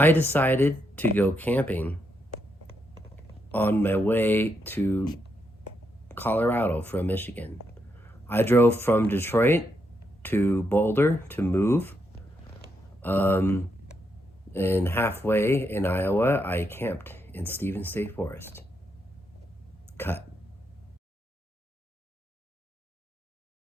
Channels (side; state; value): both; normal; correlation 0.80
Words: decided to go camping on my way to Colorado from Michigan. I drove from Detroit to Boulder to move. Um, and halfway in Iowa, I camped in Stevens State Forest. Cut.